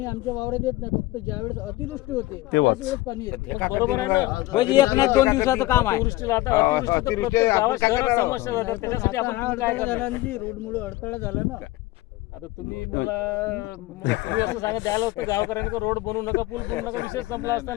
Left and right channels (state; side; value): quieter; right; 18.5 dB